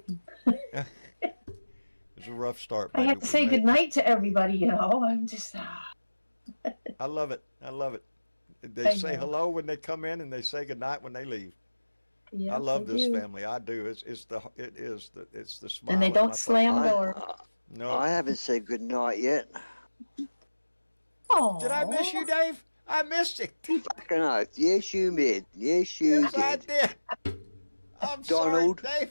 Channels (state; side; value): inverted; both; correlation -1.00